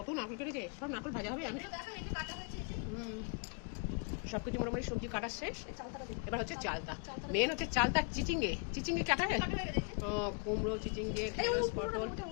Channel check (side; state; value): right; quieter; 38.9 dB